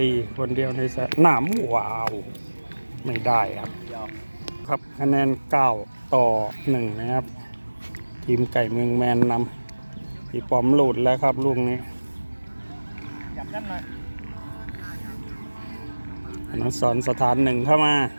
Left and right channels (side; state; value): both; inverted; correlation -1.00